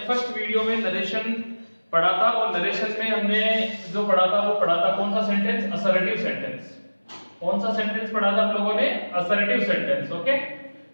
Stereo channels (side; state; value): both; inverted; correlation -1.00